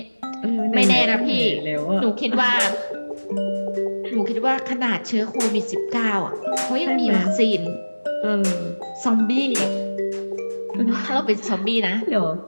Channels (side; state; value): both; inverted; correlation -1.00